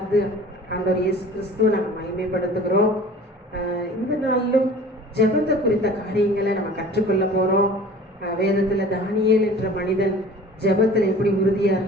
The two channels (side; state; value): both; normal; correlation 0.44